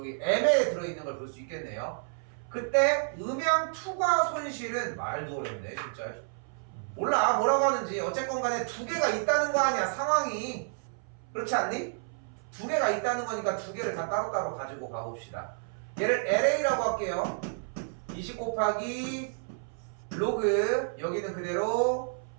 M에 들어있는 걸 볼 수 있겠네요. 그때 음양 투과 손실은 말도 어렵네 진짜. 몰라 뭐라고 하는지. 어쨌건 간에 두 개가 있다는 거 아니야 상황이. 그렇지 않니? 두 개가 있다는 거니까 두 개를 다 따로따로 가지고 가봅시다. 얘를 LA라고 할게요. 20 곱하기 로그 여기는 그대로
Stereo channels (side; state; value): left; silent; 58 dB below the other